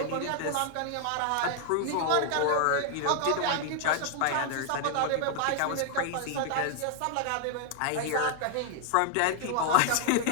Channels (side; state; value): both; different; correlation 0.00